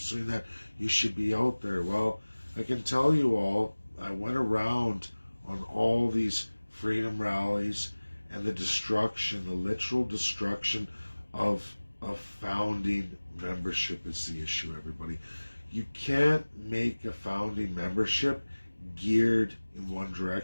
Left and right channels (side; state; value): both; inverted; correlation -1.00